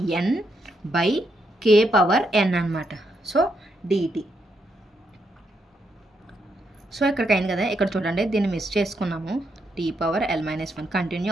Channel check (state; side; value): normal; both; correlation 0.79